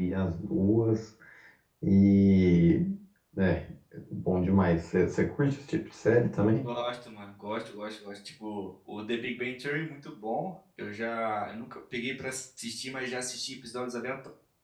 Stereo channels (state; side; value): identical; both; correlation 1.00